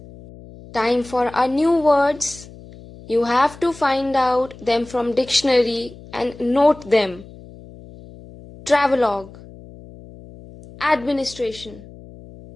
Time for our new words. You have to find out them from dictionary and note them. Travelogue, administration,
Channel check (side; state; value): left; noise; hum, 19 dB below the sound